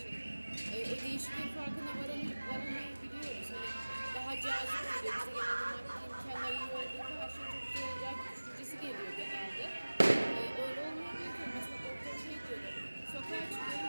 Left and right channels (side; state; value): both; inverted; correlation -1.00